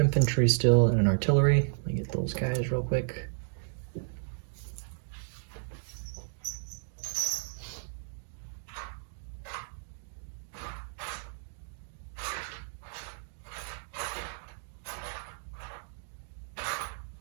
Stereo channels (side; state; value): left; silent; digital silence